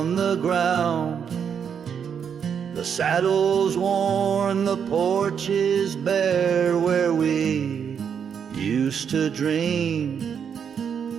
the ground. The saddle's worn, the porch is bare, where we used to dream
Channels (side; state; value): left; quieter; 7.4 dB